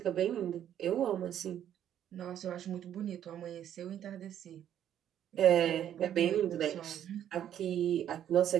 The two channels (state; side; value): quieter; left; 10.4 dB